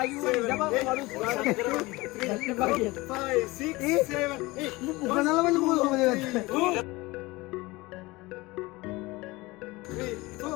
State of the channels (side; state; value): right; quieter; 21.8 dB